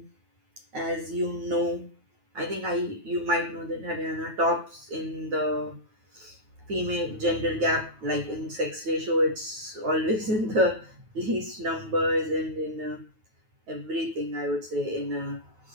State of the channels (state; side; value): late; left; 9.3 ms